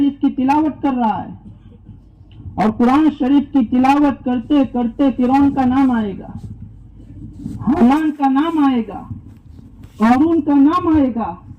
کی تلاوت کر رہا ہے اور قرآن شریف کی تلاوت کرتے کرتے فرعون کا نام آئے گا, حامان کا نام آئے گا, قارون کا نام آئے گا,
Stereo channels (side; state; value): both; identical; correlation 1.00